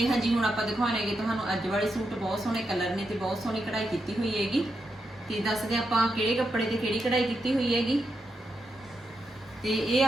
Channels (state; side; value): normal; both; correlation 0.85